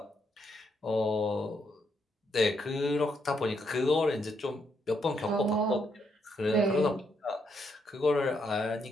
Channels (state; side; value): normal; both; correlation 0.77